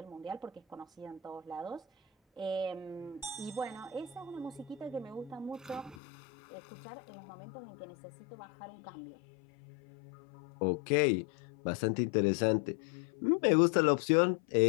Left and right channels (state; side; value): drops out; right; at 6.0 s